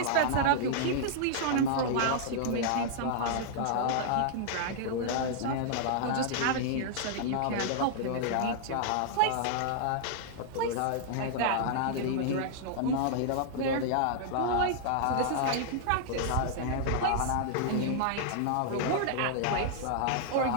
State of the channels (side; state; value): both; different; correlation -0.01